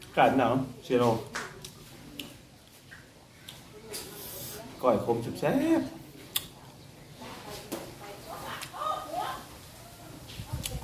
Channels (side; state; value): both; identical; correlation 1.00